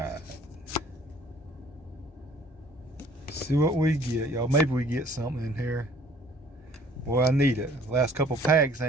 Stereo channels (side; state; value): both; normal; correlation 0.55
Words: See what we get, y'all. Maybe we get something in here. Boy, I need it. Last couple packs,